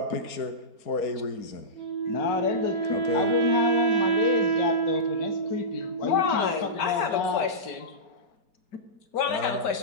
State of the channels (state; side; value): late; right; 4.4 ms